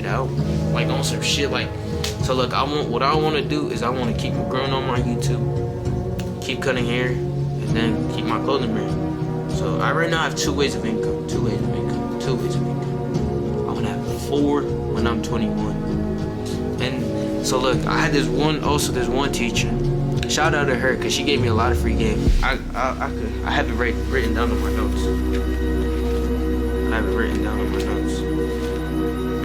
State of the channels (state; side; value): identical; both; correlation 1.00